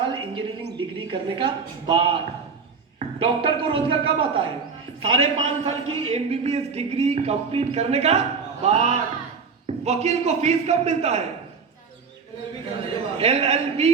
इंजीनियरिंग डिग्री करने का बाद। डॉक्टर को रोजगार कब आता है? 5.5 साल की एमबीबीएस डिग्री कंप्लीट करने का बाद। वकील को फीस कब मिलता है? एलएलबी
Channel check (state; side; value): quieter; left; 5.4 dB